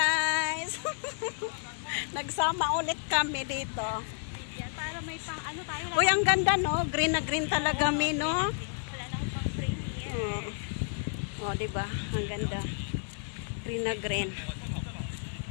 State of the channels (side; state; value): right; silent; digital silence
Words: Nagsama ulit kami dito. Yan, para may pang ano tayo. Uy, ang ganda no? Green na green talaga mi, no? Wala na akong pang frame here. Oh, diba? Ang ganda. Green na green.